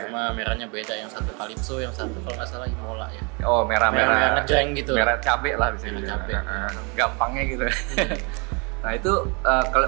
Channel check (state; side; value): quieter; left; 32.2 dB